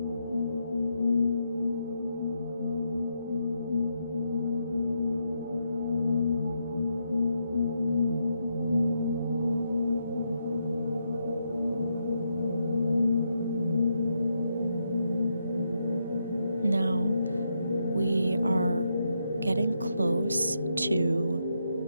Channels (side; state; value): both; inverted; correlation -0.81